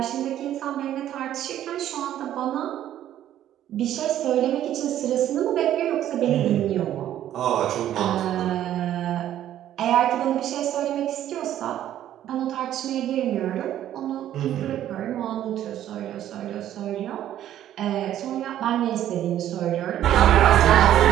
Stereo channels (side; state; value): left; quieter; 11.8 dB